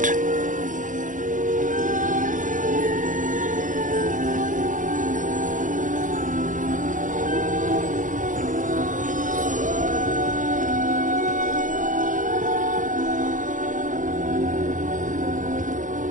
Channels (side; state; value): left; late; 0.38 ms